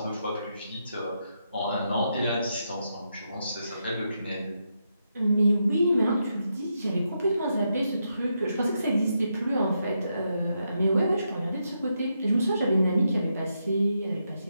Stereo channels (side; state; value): both; inverted; correlation -0.82